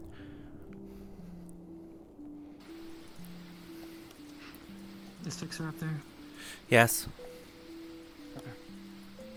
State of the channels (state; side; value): identical; both; correlation 1.00